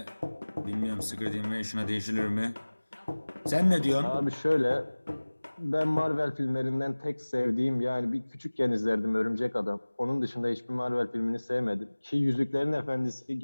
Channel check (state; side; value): inverted; both; correlation -1.00